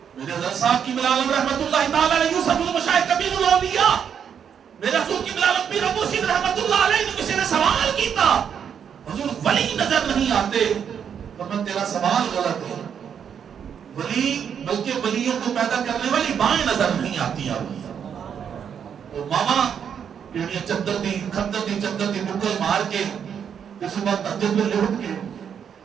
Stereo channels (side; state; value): left; quieter; 7.9 dB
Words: میرے حضرت صاحب کی ملالم رحمت اللہ تعالی علیہ یوسف المشاہد کبیر الاولیاء میرے حضور کی ملالم پیر ابو سید رحمت اللہ علیہ نے کسی نے سوال کیتا حضور ولی نظر نہیں آتے فرمایا تیرا سوال غلط ہے ولی بلکہ ولیوں کو پیدا کرنے والی مائیں نظر نہیں آتی اور ماما پیڑیاں چدر دی چدر دی مکل مار کے اس وقت تحجد میں لوٹ کے